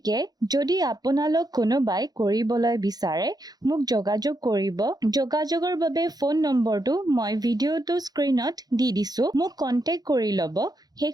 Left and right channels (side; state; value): left; late; 0.19 ms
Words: যদি আপোনালোক কোনোবাই কৰিবলৈ বিচাৰে মোক যোগাযোগ কৰিব। যোগাযোগৰ বাবে ফোন নম্বৰটো মই ভিডিঅ'টো স্ক্ৰীনত দি দিছো, মোক কন্টেক্ট কৰি ল'ব।